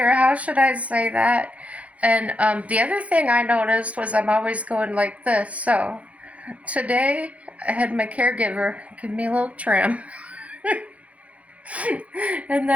how should I say that? And the other thing I noticed was I'm always going like this. So, today I had my caregiver give me a little trim. And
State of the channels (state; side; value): late; left; 0.065 ms